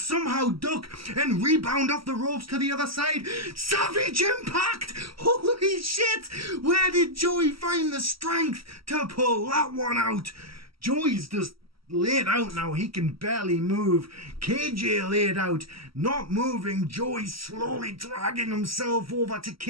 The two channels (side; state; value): left; late; 0.75 ms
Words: somehow duck and rebound off the ropes to the other side. Savage impact! Holy shit! Where did Joey find the strength to pull that one out? Joey's just laid out now. He can barely move. KJ laid out, not moving. Joey slowly dragging himself over to